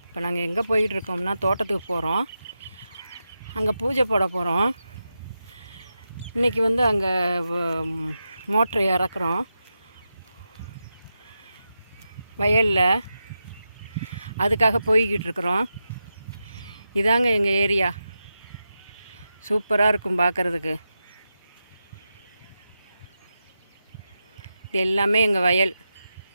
இப்போ நாங்கள் எங்கே போயிட்டுருக்கோம்னா தோட்டத்துக்கு போகிறோம். அங்கே பூஜை போட போகிறோம். இன்றைக்கி வந்து அங்கே மோட்ரு இறக்குறோம் வயலில். அதுக்காக போய்கிட்டு இருக்கிறோம். இதாங்க எங்கள் ஏரியா. சூப்பராக இருக்கும் பார்க்குறதுக்கு. இது எல்லாமே எங்கள் வயல்.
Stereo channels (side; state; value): both; inverted; correlation -0.89